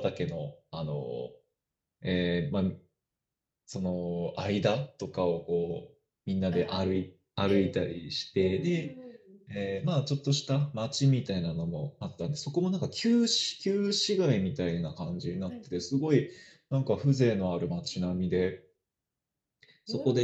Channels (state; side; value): identical; both; correlation 1.00